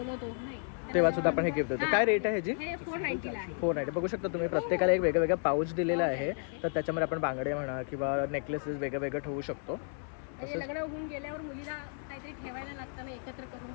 तर तेव्हा सुद्धा आपण हे गिफ्ट देतो. हां. काय रेट आहे ह्याची? हे 490 ला आहे. 490. बघू शकता तुम्ही प्रत्येकाला एक वेगळं वेगळं पाऊच दिलेलं आहे. तर त्याच्यामध्ये आपण बांगडे म्हणा किंवा नेकलेसेस वेगळं वेगळं ठेवू शकतो. म्हणजे लग्न होऊन गेल्यावर मुलीला काहीतरी ठेवायला लागतं ना, एकत्र करून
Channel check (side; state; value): right; silent; 56 dB below the other